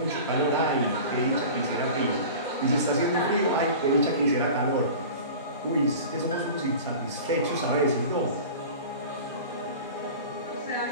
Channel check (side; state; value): both; inverted; correlation -0.37